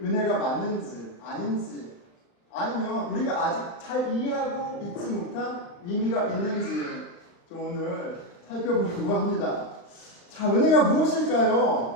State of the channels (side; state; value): right; late; 36 ms